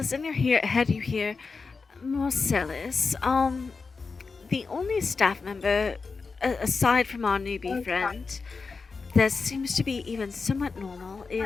in your head you hear, Marcellus, the only staff member, aside from our newbie friend, that seems to be even somewhat normal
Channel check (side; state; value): right; quieter; 4.6 dB